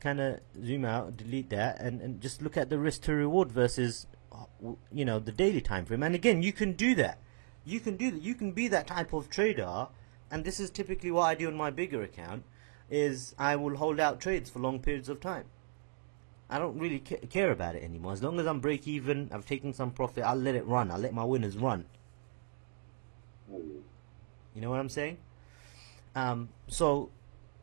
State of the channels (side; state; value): left; silent; digital silence